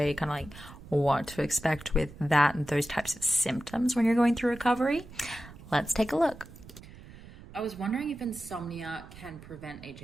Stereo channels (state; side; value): noise; right; rumble, 18 dB below the sound